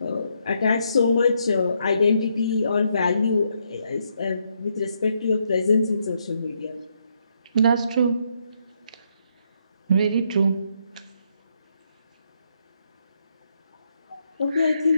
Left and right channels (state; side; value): inverted; both; correlation -0.76